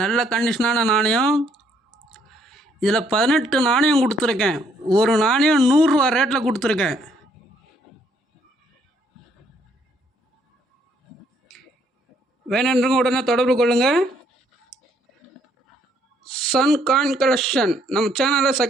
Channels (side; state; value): both; normal; correlation 0.68